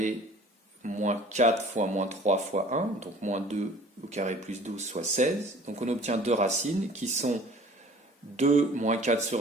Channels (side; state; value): both; normal; correlation 0.49